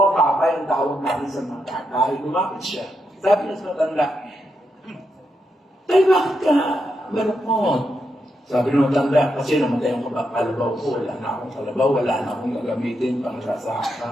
Papay ang tawag namin sa mga tatay. Lumapit siya. Sabi niya sa matanda, Tay, bakit ka malungkot? Sabi ng matanda, kasi namatay ang kalabaw ko, wala na akong kalabaw, wala na akong gagamitin pang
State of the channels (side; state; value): both; normal; correlation 0.83